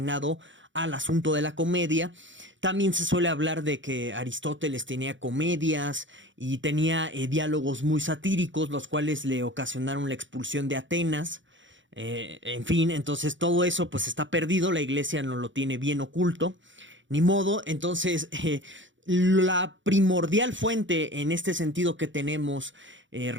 al asunto de la comedia. También se suele hablar de que Aristóteles tenía comedias y tenía diálogos muy satíricos, los cuales le ocasionaron la expulsión de Atenas. En fin, entonces todo eso pues está perdido, la iglesia no lo tiene bien oculto, ni modo. Entonces la primordial fuente en este sentido que tenemos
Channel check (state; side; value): late; left; 0.55 ms